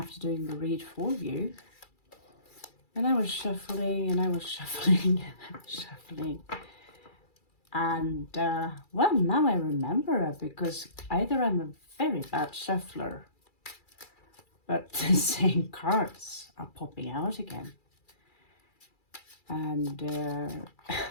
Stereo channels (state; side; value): late; right; 2.3 ms